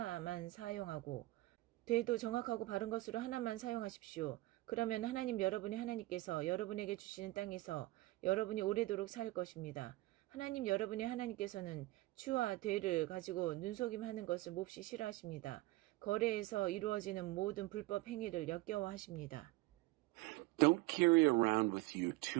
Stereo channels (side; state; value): left; quieter; 19.3 dB